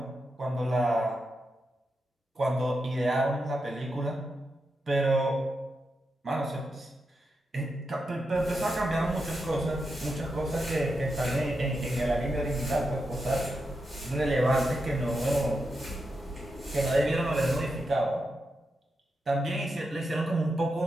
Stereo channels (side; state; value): both; normal; correlation 0.86